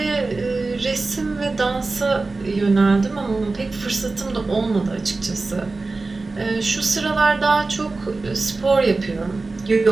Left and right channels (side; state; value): left; quieter; 3.6 dB